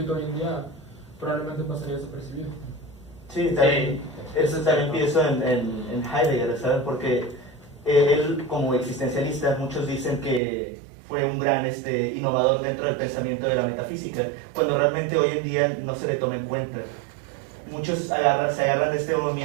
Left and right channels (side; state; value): left; drops out; at 10.4 s